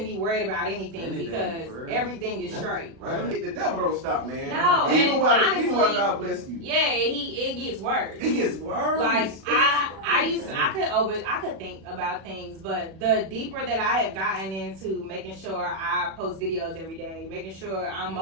be worried about anything because for real. everything is straight. Right. The devil don't stop, man. No, Even and while honestly, God bless you. Yeah, it gets worse. It gets worse. Like I could think about things, but the deeper that I have gotten into making sure I post videos every day, making sure I'm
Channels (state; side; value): late; left; 36 ms